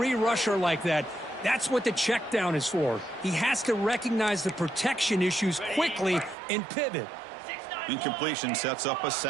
rusher like that, that's what the check down is for. He has to recognize the protection issues quickly and pivot. Incompletion sets up a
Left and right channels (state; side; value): drops out; left; at 6.4 s